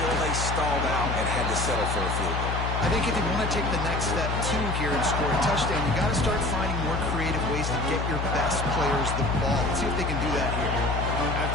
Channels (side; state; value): left; noise; hum, 1 dB below the sound